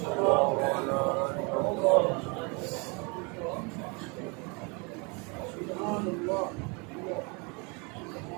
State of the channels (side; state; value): left; quieter; 31.4 dB